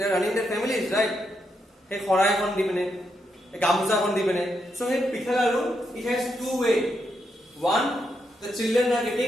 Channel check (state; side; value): normal; both; correlation 0.81